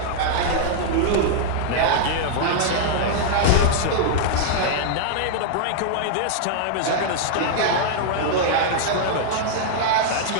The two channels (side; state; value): both; different; correlation -0.01